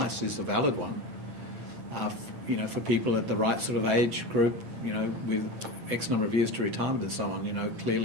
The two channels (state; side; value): late; left; 8.9 ms